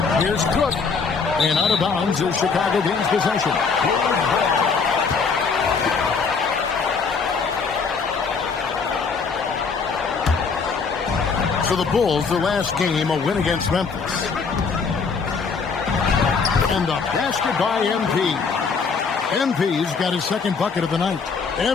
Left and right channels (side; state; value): right; quieter; 5.2 dB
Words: Here's Cook. And out of bounds is Chicago gains possession. For the Bulls, the last game, a win against Memphis. And the basket by MP. MP's got his second bucket of the night.